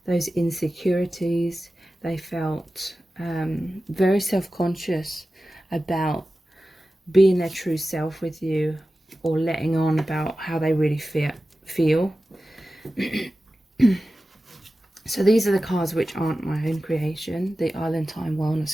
those insecurities. They felt very self-conscious about being their true self with you, or letting on about how they really feel. So these are the cards which aren't my own creation, the Island Time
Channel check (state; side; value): normal; both; correlation 0.95